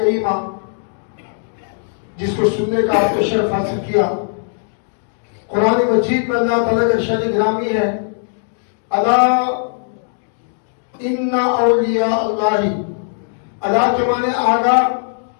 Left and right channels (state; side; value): silent; right; digital silence